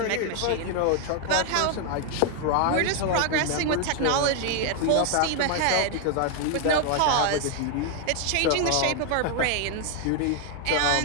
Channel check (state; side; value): different; both; correlation 0.01